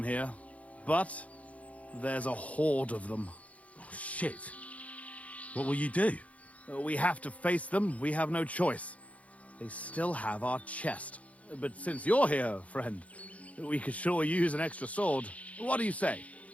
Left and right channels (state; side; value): late; right; 0.067 ms